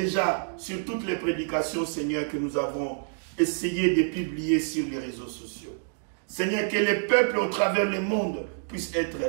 sur toutes les prédications, Seigneur, que nous avons essayé de publier sur les réseaux sociaux. Seigneur, que les peuples au travers le monde puissent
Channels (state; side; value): silent; left; digital silence